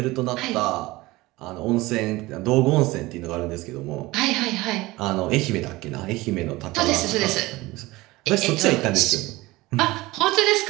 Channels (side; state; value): left; quieter; 20.2 dB